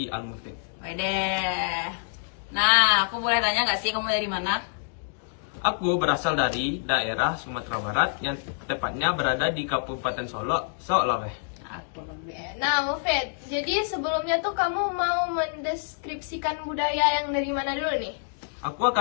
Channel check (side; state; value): right; silent; digital silence